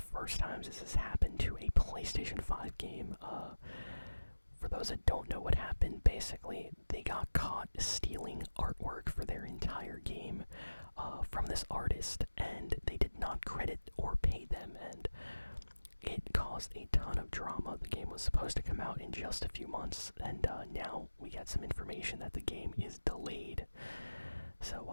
times this has happened to a PlayStation 5 game. For those that don't know what happened, basically, they got caught stealing artwork for their entire game from this artist, and they did not credit or pay them, and it caused a ton of drama. The game was supposed to come out in just a few months, and now we got some information that the game is delayed.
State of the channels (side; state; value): both; inverted; correlation -1.00